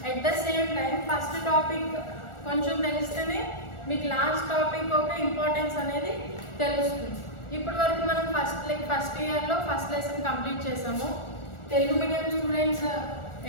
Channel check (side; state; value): right; late; 1.4 ms